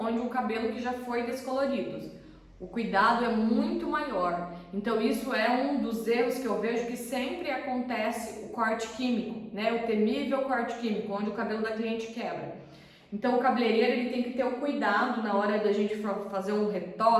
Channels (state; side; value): identical; both; correlation 1.00